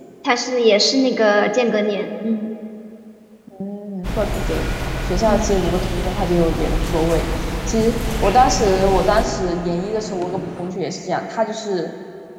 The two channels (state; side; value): identical; both; correlation 1.00